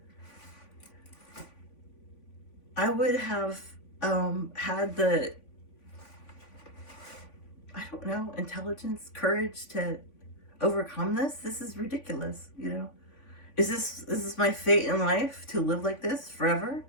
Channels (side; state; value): right; late; 3.5 ms